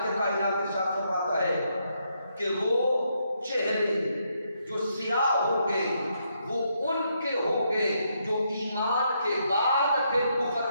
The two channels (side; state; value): both; inverted; correlation -0.77